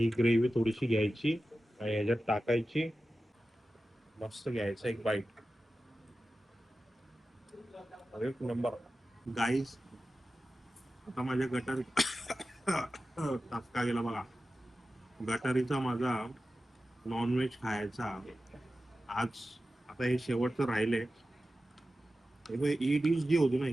ग्रेव्ही थोडीशी घ्यायची आणि ह्याच्यात टाकायची, मस्त घ्यायचं एक बाईट, एक नंबर. गाईस आता माझ्या गटारी टाचका गेला बघा. गटारीचा माझा नॉनव्हेज खायचा आज आता हे शेवटचं राहिले. ही डिश जी होती ना,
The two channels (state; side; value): normal; both; correlation 0.94